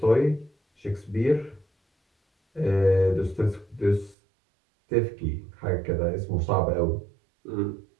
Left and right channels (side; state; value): left; drops out; at 4.2 s